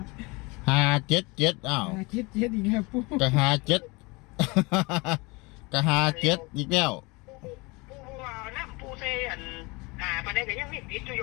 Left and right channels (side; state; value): right; quieter; 25.9 dB